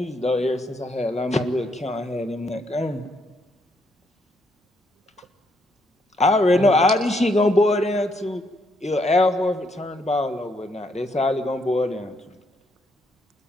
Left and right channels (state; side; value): normal; both; correlation 0.74